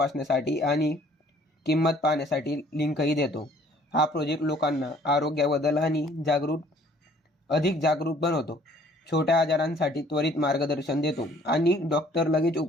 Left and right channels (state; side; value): normal; both; correlation 0.57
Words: आणि किंमत पाहण्यासाठी लिंकही देतो. हा प्रोजेक्ट लोकांना आरोग्याबद्दल आणि अधिक जागरूक बनवतो, छोट्या आजारांसाठी त्वरित मार्गदर्शन देतो आणि डॉक्टर लगेच